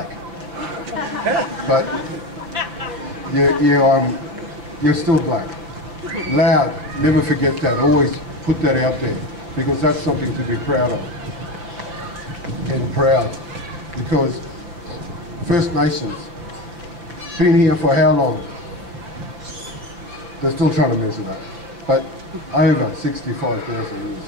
But you're still black. Loud, never forget that. Always put that out there, because that's something to be proud of. And proud, because First Nations, been here for how long? They're still trying to measure that. But over 65,000 years.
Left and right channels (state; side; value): late; left; 5.7 ms